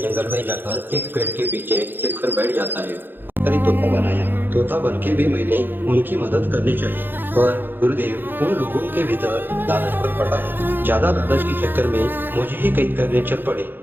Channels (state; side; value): late; left; 0.097 ms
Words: में जाकर एक पेड़ के पीछे छिपकर बैठ जाता है। अरे तोता बनाया, तोता बन के भी मैंने उनकी मदद करनी चाहिए, पर गुरुदेव उन लोगों के भीतर लालच पर पड़ा है। ज्यादा लालच के चक्कर में मुझे ही कैद करने चल पड़े।